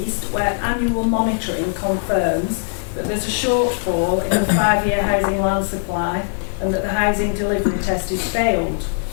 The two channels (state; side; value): silent; right; digital silence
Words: where annual monitoring confirms that there's a shortfall in the 5-year housing land supply and that the housing delivery test is failed.